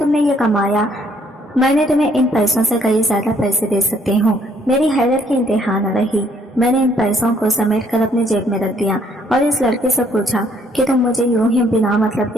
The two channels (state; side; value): normal; both; correlation 0.66